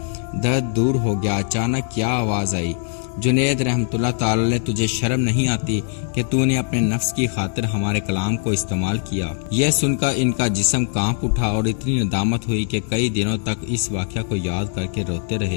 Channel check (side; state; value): right; silent; digital silence